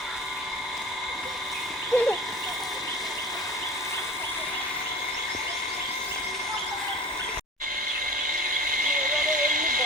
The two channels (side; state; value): both; normal; correlation 0.37